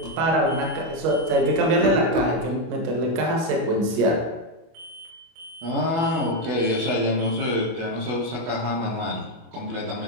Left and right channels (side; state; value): left; late; 25 ms